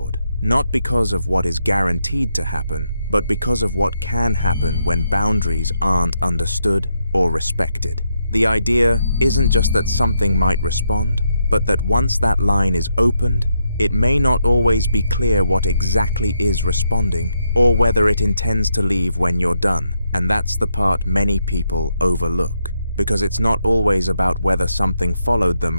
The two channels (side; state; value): both; inverted; correlation -0.80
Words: not because of what is guaranteed to happen, but because of what can happen when boundaries aren't understood or respected. The idea isn't just that something might respond, but that once that line is opened, it may not always be clear what exactly is responding, or whether it intends to leave when you're done. And that's the part many people overlook, because it's not always about whether something followed